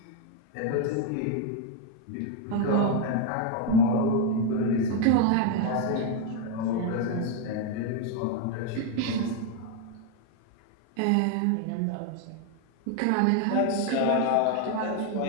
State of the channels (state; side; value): different; both; correlation 0.01